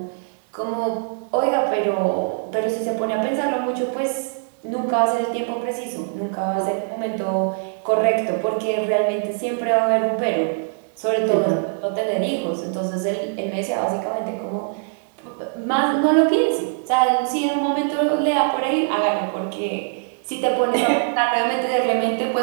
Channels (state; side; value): silent; left; digital silence